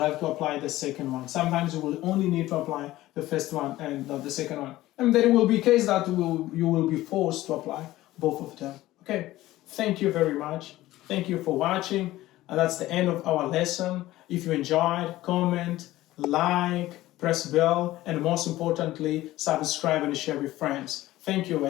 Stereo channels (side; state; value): right; quieter; 16.3 dB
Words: to apply the second one. Sometimes you will only need to apply the first one and not the second one. And there will be case that you will be forced to apply both of them. Okay, thank you very much. Thank you for watching. And that's the end of our lesson. If you enjoyed, comment, like, press bell, and most importantly, subscribe and share with friends. Thank you.